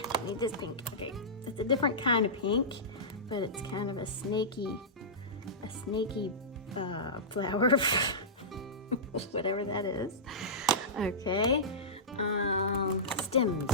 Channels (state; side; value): normal; both; correlation -0.17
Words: need this pink. Okay, it's a different kind of pink, but it's kind of a snaky flower, whatever that is. Okay,